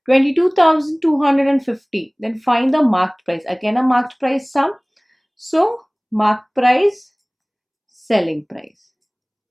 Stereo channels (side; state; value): both; identical; correlation 1.00